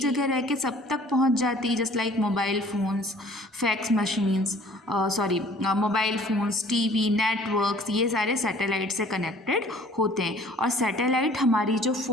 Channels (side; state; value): both; normal; correlation 0.53